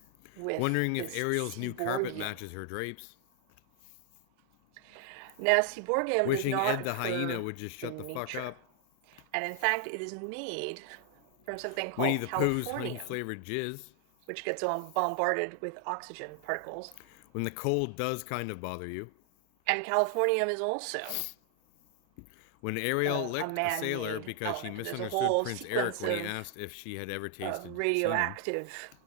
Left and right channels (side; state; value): both; different; correlation 0.00